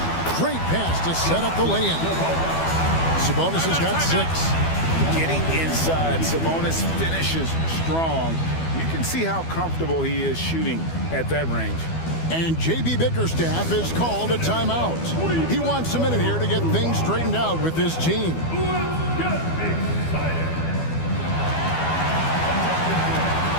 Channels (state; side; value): late; right; 12 ms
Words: Great pass to set up the lay-in. Sabonis has got 6. Getting inside, Sabonis finishes strong. You can see how comfortable he is shooting at that range. And J.B. Bickerstaff has called a timeout. He wants a minute here to get things straightened out with this team. And